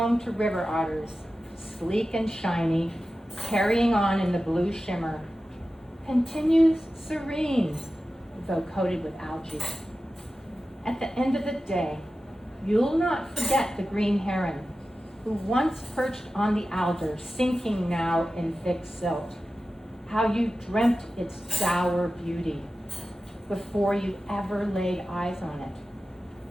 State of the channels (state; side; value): normal; both; correlation 0.94